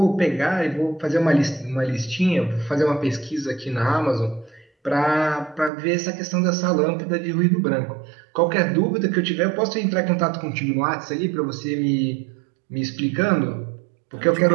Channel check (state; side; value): drops out; left; at 5.7 s